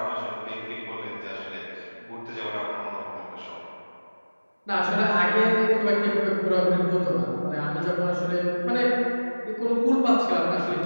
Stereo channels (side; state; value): both; inverted; correlation -1.00